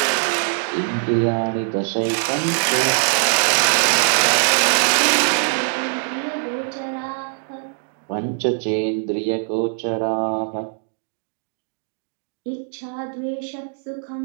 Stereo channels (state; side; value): silent; left; digital silence